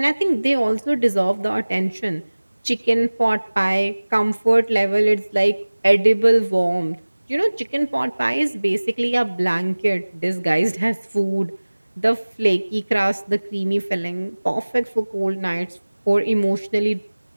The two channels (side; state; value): both; inverted; correlation -1.00